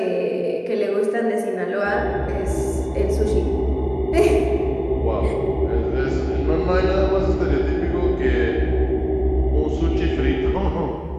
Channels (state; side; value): identical; both; correlation 1.00